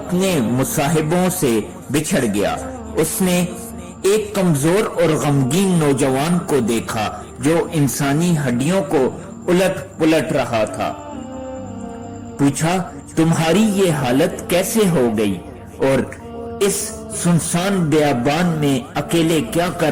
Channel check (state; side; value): identical; both; correlation 1.00